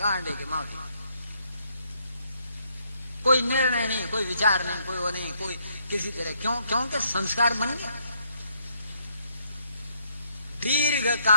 के माफी, कोई निर्णय नहीं, कोई विचार नहीं, कोई वो नहीं, कोई किसी तरह। क्योंकि संस्कार बन गया। दीर्घ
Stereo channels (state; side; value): inverted; both; correlation -0.71